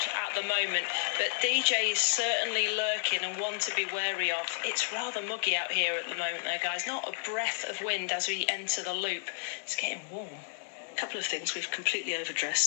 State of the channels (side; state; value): right; silent; 57 dB below the other